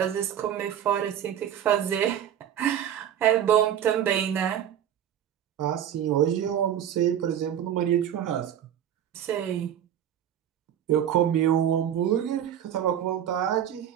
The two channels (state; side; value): quieter; left; 10.1 dB